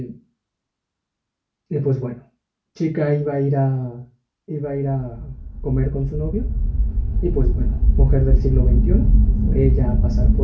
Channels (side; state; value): both; identical; correlation 1.00